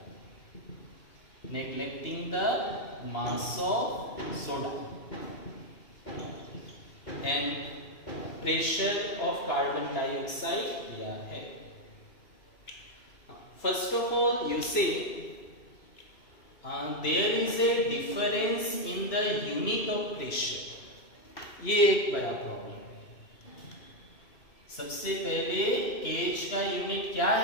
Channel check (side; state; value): right; late; 2.8 ms